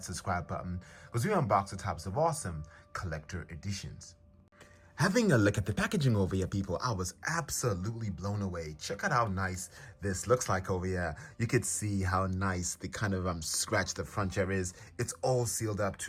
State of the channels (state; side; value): identical; both; correlation 1.00